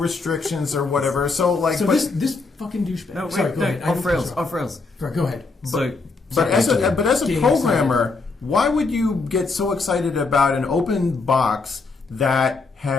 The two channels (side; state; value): right; quieter; 4.0 dB